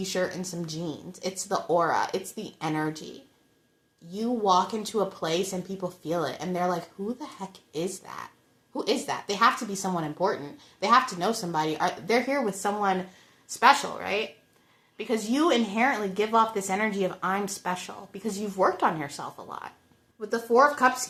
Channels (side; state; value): both; identical; correlation 1.00